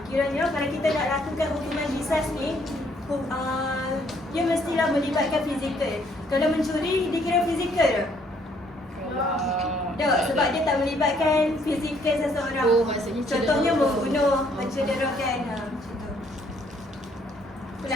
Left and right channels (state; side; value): normal; both; correlation 0.66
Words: Kiranya kalau kita nak lakukan hukuman qisas ni, dia mestilah melibatkan fizikal. Kalau mencuri, dikira fizikal tak? Tak, sebab dia tak melibatkan fizikal seseorang. Contohnya membunuh, mencederakan.